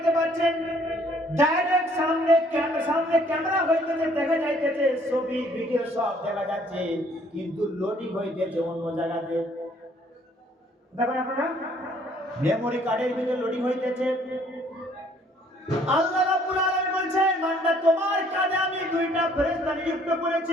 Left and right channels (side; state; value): both; normal; correlation 0.61